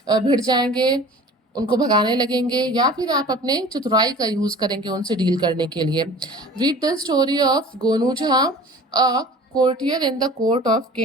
भिड़ जाएंगे, उनको भगाने लगेंगे, या फिर आप अपने चतुराई का यूज करेंगे उनसे डील करने के लिए। Read the story of Gonu Jha, a courtier in the court of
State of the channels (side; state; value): both; normal; correlation 0.43